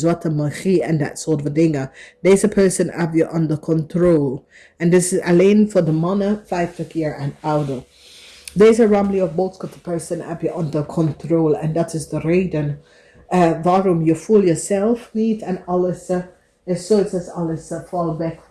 magie en dat soort van dingen. Deze person heb je under control. En dit is alleen voor de mannen 50 jaar en ouder. Deze ramli of boodschap person heb je under control. En dat is de reden waarom je voelt jezelf niet en alles is zoiets als alles valt weg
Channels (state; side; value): identical; both; correlation 1.00